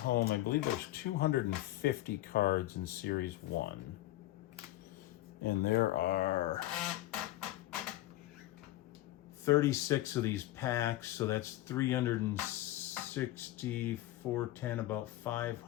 I believe there's 250 cards in Series 1. And there are 36 of these packs, so that's 360, 410, about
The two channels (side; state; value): right; quieter; 15.7 dB